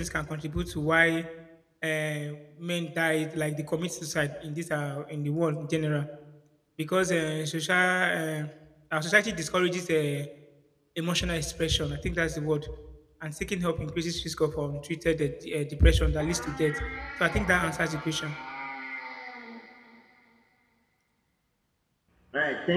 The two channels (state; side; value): identical; both; correlation 1.00